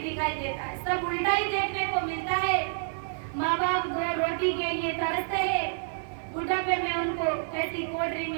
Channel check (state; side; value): silent; left; 59 dB below the other